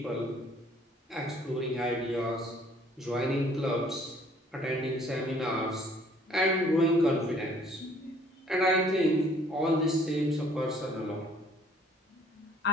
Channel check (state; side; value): normal; both; correlation 0.59